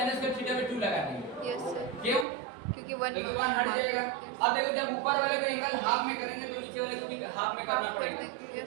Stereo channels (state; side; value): drops out; left; at 2.2 s